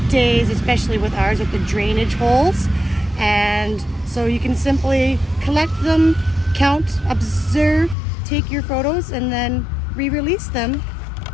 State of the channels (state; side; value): drops out; right; at 8.0 s